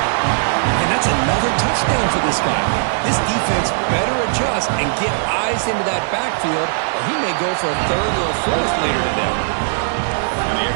And that's another touchdown for this guy. This defense better adjust and get eyes into that backfield, or he may go for a 3rd or a 4th later today. And the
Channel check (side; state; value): left; silent; digital silence